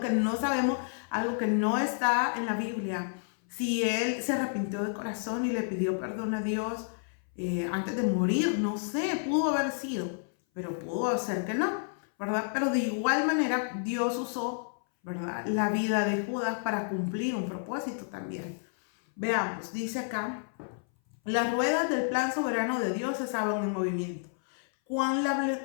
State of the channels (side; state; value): right; silent; 58 dB below the other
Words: no sabemos, algo que no está en la Biblia, si él se arrepintió de corazón y le pidió perdón a Dios antes de morir. No sé, pudo haber sido, pero pudo ser que no, ¿verdad? Pero de igual manera Dios usó, ¿verdad?, la vida de Judas para cumplir un propósito también. Veamos, dice acá, las ruedas del plan soberano de Dios estaban en movimiento. Cuán